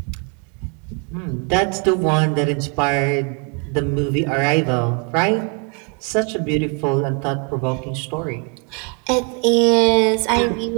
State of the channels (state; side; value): quieter; left; 36.0 dB